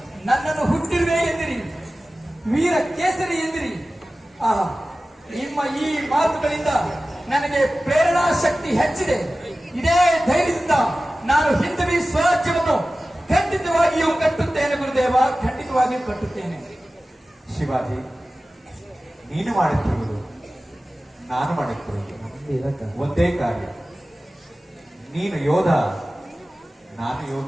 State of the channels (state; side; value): normal; both; correlation 0.96